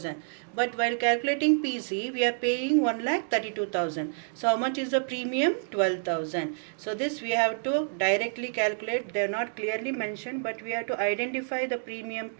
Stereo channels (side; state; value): left; silent; digital silence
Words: But while calculating PC, we are paying 1,32,000. So how much is the premium? 12,000. So this we have to directly calculate. They are not clearly mentioned, but we have to identify the premium